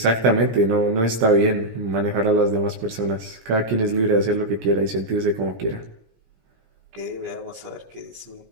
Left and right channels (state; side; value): late; left; 17 ms